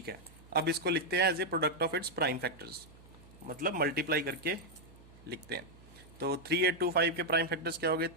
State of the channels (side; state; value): right; noise; hum, 23 dB below the sound